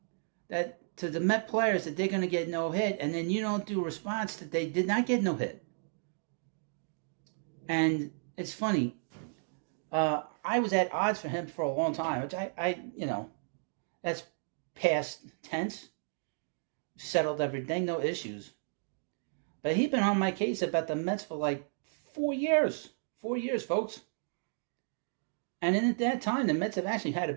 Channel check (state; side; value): silent; left; digital silence